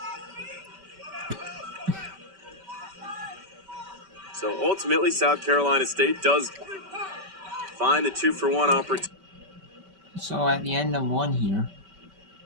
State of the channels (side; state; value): left; late; 5.2 ms